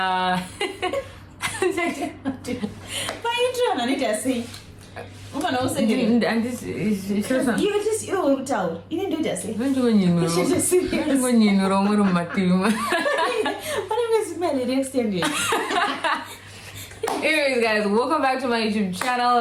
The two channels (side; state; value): both; identical; correlation 1.00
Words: And this is you just you tell. You didn't do that. Say. When you Anyways, guys, welcome back to my YouTube channel.